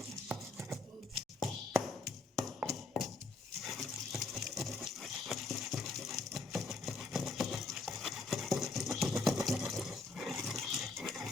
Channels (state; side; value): quieter; right; 3.5 dB